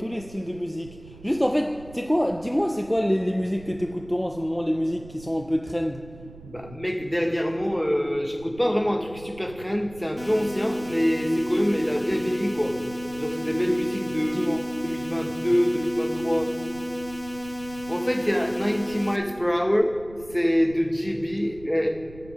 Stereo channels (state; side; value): noise; right; rumble, 19 dB below the sound